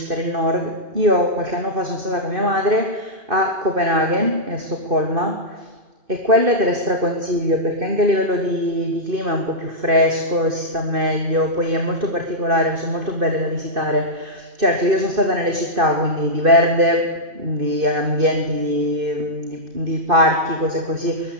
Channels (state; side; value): late; left; 2.5 ms